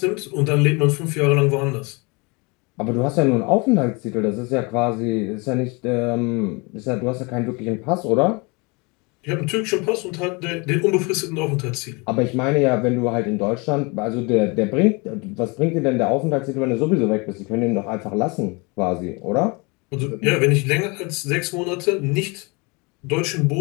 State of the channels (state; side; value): quieter; right; 28.7 dB